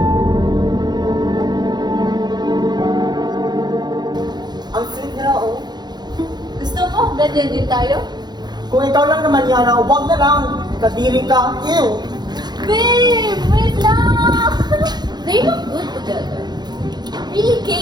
Ang sweet nila, oh. Gusto mo? Ganyan din tayo? Kung ikaw lang naman yan, huwag na lang. Kadiri ka. Ew! Babe! Wait lang! They look good together. Really,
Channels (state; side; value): late; left; 0.20 ms